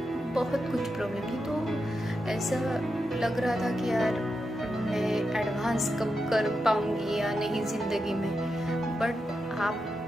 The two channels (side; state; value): both; normal; correlation 0.87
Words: बहुत कुछ प्रॉब्लम थी। तो ऐसा लग रहा था कि यार मैं एडवांस कब कर पाऊंगी या नहीं ज़िंदगी में। बट